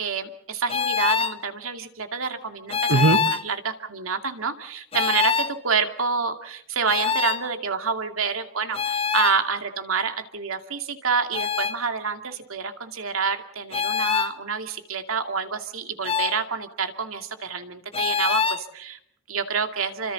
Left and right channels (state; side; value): normal; both; correlation -0.07